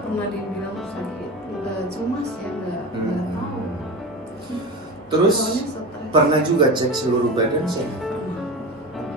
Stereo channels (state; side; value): normal; both; correlation 0.27